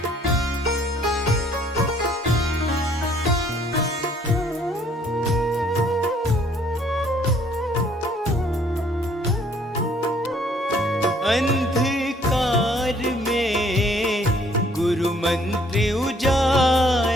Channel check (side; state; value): both; normal; correlation 0.61